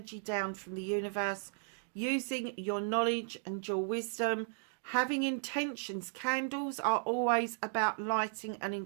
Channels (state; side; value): silent; left; digital silence